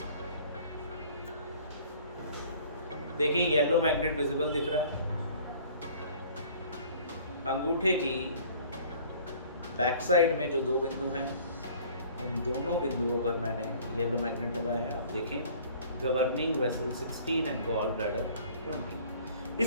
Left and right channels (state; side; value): inverted; both; correlation -0.51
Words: देखिए येलो मैग्नेट विजिबल दिख रहा है। अंगूठे की बैक साइड में जो 2 बिंदु हैं, उन दोनों बिंदुओं पर मैंने येलो मैग्नेट लगाया है। आप देखें governing vessel 16 and gall bladder 20।